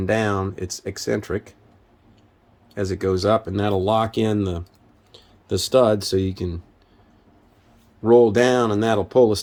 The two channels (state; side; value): identical; both; correlation 1.00